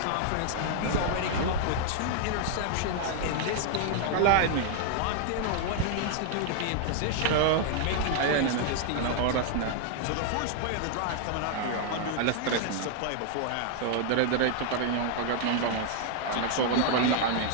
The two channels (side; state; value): both; different; correlation 0.00